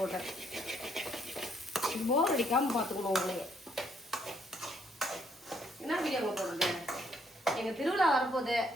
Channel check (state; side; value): normal; both; correlation 0.70